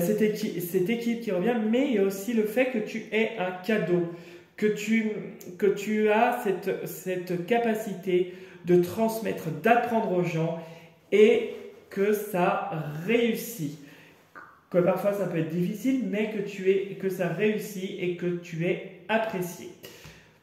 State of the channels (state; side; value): identical; both; correlation 1.00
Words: cette équipe qui revient, mais il y a aussi le fait que tu es un cadeau, que tu as cette capacité de transmettre, d'apprendre aux gens et que ça réussit. Que parfois ça peut être difficile, mais que ça réussit et que tu es apprécié.